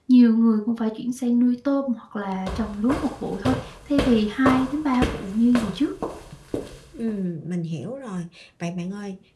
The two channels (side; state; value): both; identical; correlation 1.00